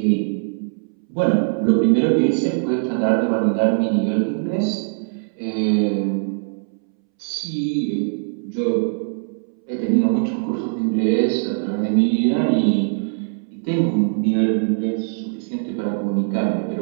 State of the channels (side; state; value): left; silent; 65 dB below the other